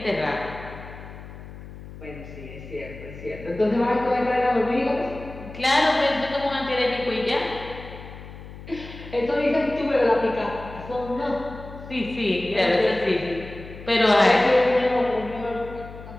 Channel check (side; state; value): left; noise; hum, 15 dB below the sound